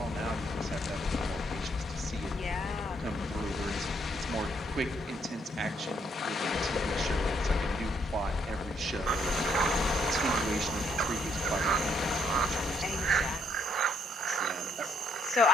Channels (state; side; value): normal; both; correlation 0.71